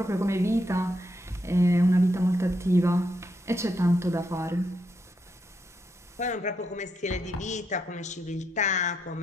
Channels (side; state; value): both; normal; correlation 0.80